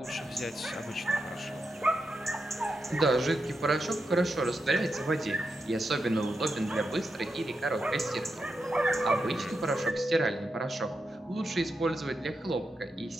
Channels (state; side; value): normal; both; correlation 0.86